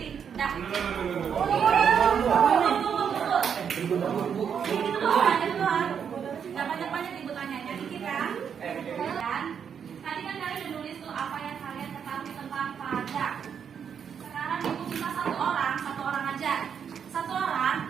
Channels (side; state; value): left; quieter; 7.5 dB